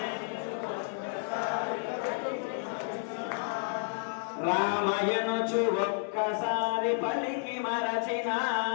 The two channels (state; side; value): silent; right; digital silence